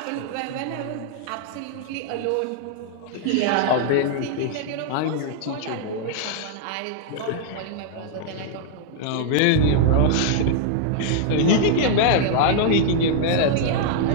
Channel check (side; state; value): both; different; correlation -0.01